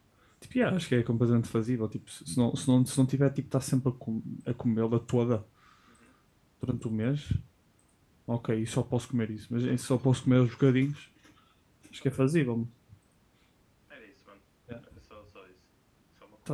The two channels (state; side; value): identical; both; correlation 1.00